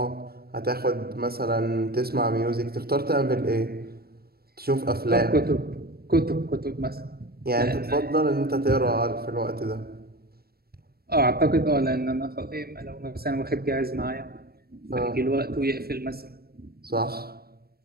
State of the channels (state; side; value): late; left; 0.45 ms